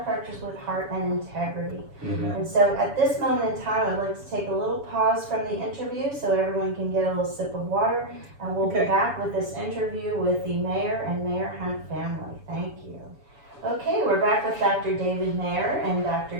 with heart and integrity. And so at this moment in time, I'd like to take a little pause from the interview so everyone can get a little sip of water, and we'll be back with this interview with the Mayer and Mayer Hunt family. Thank you. Okay, we're back with Dr. David Mayer and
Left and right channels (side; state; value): left; late; 7.0 ms